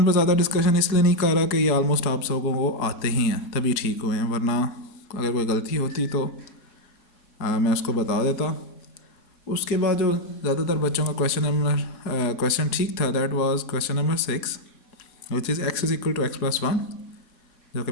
पर ज़्यादा डिस्कशन इसलिए नहीं कर रहा कि ये ऑलमोस्ट आप सबको वो आते ही हैं तभी ठीक हुए हैं, वरना अगर कोई गलती होती तो मैं उसको बता देता। उसके बाद जो ज़्यादातर बच्चों का क्वेश्चन ठीक था that was question number 6 which is x is equal to x+1, जो कि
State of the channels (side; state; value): right; late; 4.7 ms